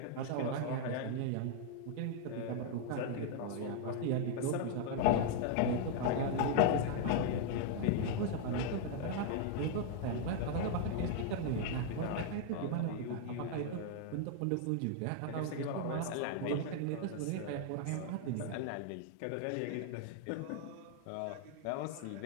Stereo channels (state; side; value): different; both; correlation 0.00